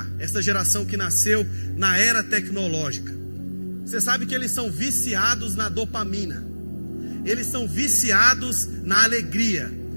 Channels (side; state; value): both; inverted; correlation -1.00